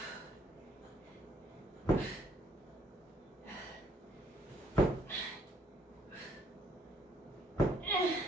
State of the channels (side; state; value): both; normal; correlation 0.66